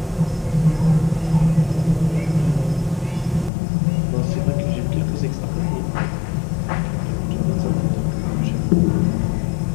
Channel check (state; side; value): drops out; right; at 3.5 s